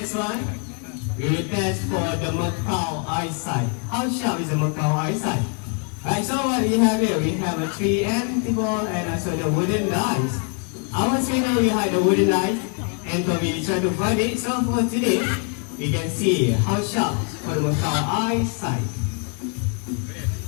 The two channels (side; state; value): right; quieter; 38.1 dB